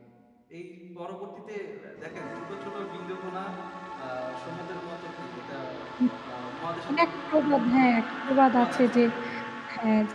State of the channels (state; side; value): identical; both; correlation 1.00